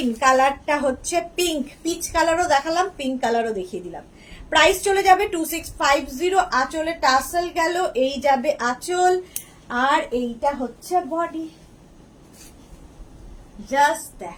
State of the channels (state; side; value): identical; both; correlation 1.00